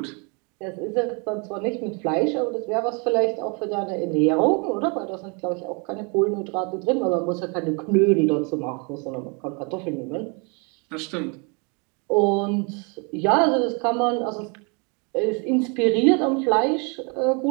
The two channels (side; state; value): left; quieter; 33.4 dB